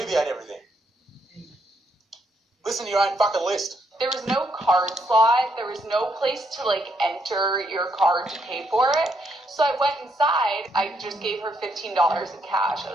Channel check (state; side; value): normal; both; correlation 0.75